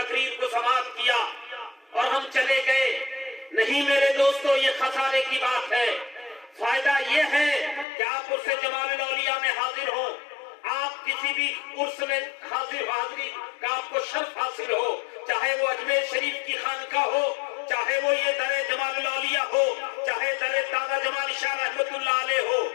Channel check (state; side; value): drops out; right; at 7.9 s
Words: کو سماعت کیا اور ہم چلے گئے، نہیں میرے دوستو، یہ خسارے کی بات ہے۔ فائدہ یہ ہے کہ آپ عرس جمال الاولیاء میں حاضر ہوں، آپ کسی بھی عرس میں حاضری کا آپ کو شرف حاصل ہو، چاہے وہ اجمیر شریف کی خانقاہ ہو، چاہے وہ یہ در جمال الاولیاء ہو، چاہے در دادا جمال شاہ رحمت اللہ علیہ ہو،